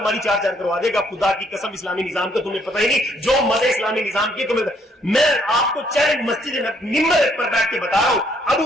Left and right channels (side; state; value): both; normal; correlation 0.68